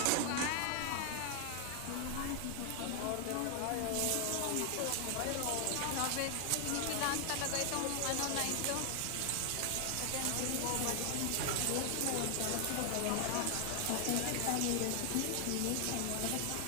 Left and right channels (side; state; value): both; different; correlation 0.00